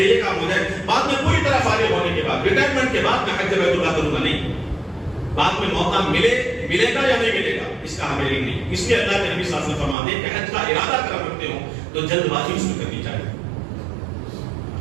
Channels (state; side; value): drops out; left; at 10.0 s